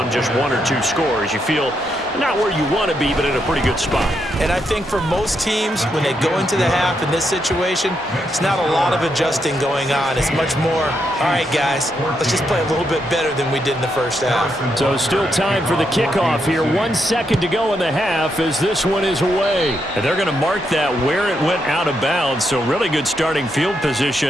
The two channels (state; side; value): normal; both; correlation 0.80